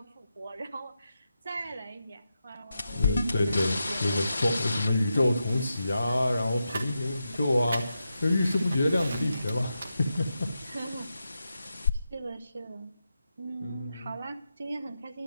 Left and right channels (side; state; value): both; inverted; correlation -0.88